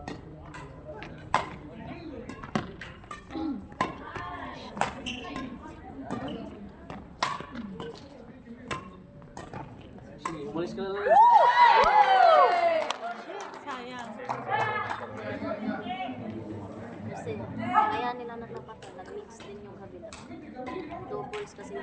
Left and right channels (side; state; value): both; identical; correlation 1.00